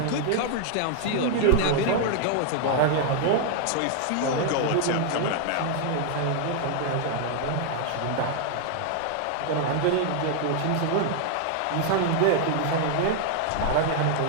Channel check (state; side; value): different; both; correlation 0.00